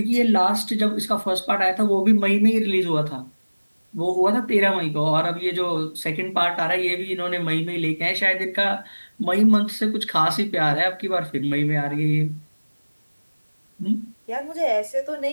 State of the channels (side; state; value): both; inverted; correlation -1.00